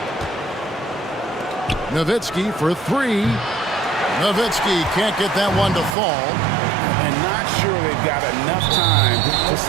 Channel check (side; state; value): left; drops out; at 6.0 s